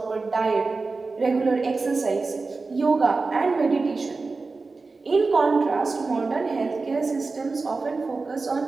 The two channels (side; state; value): left; quieter; 4.0 dB